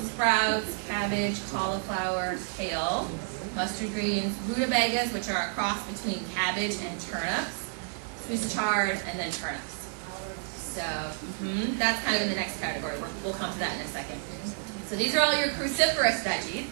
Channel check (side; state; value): left; silent; 56 dB below the other